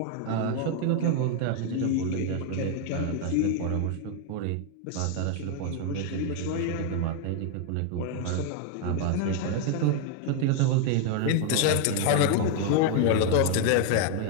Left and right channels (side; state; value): both; different; correlation 0.01